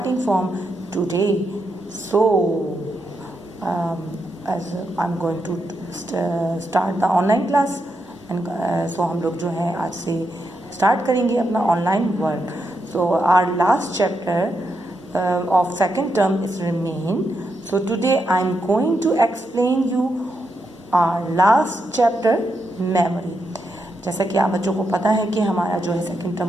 from today. So, as I'm going to start the online class, and so हम लोग जो है आज से start करेंगे अपना online work. So, our last chapter of second term is remain. So today I am going to explain you our last chapter, memory. जैसा कि आप बच्चों को पता है कि हमारा जो है सेकेंड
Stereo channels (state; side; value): normal; both; correlation 0.83